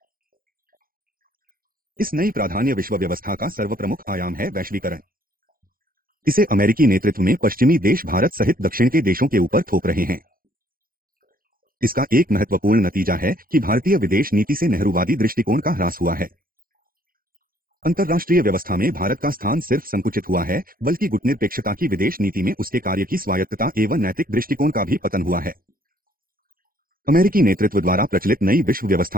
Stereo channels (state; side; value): late; left; 0.42 ms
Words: इस नई प्राधान्य विश्व व्यवस्था का सर्वप्रमुख आयाम है वैश्वीकरण। इसे अमेरिकी नेतृत्व में पश्चिमी देश भारत सहित दक्षिण के देशों के ऊपर थोप रहे हैं। इसका एक महत्वपूर्ण नतीजा है कि भारतीय विदेश नीति से नेहरूवादी दृष्टिकोण का ह्रास हुआ है। अंतर्राष्ट्रीय व्यवस्था में भारत का स्थान सिर्फ संकुचित हुआ है बल्कि गुटनिरपेक्षता की विदेश नीति में उसके कार्य की स्वायत्तता एवं नैतिक दृष्टिकोण का भी पतन हुआ है। अमेरिकी नेतृत्व द्वारा प्रचलित नई विश्व